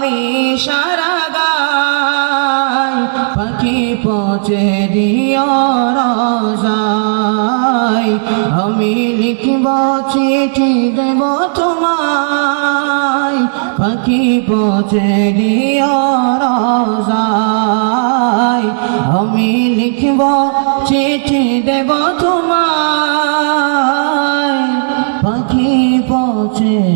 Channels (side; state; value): left; silent; digital silence